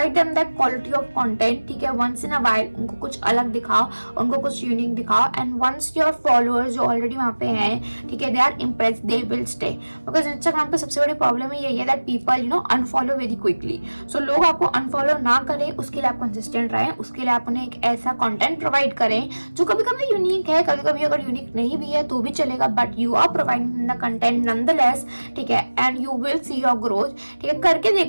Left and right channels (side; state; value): both; inverted; correlation -1.00